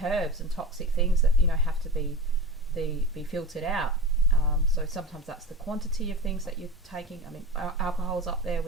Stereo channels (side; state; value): both; normal; correlation 0.30